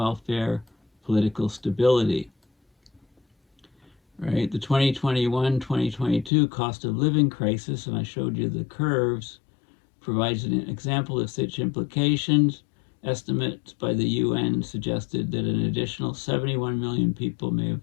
political stability. Right, the 2021-2022 cost of living crisis, and I showed you the curves, provides an example of such implications. Estimates by the UN suggested that an additional 71 million people may have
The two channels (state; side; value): drops out; right; at 6.3 s